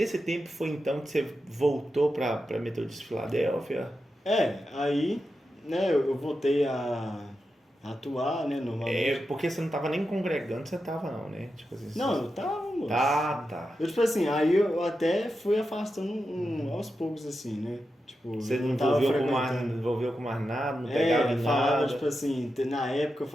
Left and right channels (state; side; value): normal; both; correlation 0.89